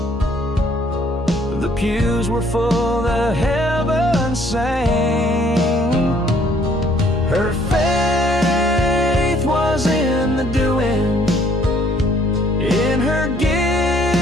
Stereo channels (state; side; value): normal; both; correlation 0.63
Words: The pews were full, the heavens sang. Her faith was in the doing, in her giving,